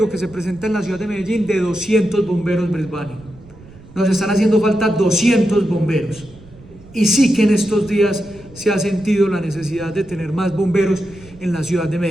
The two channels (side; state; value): right; noise; rumble, 22 dB below the sound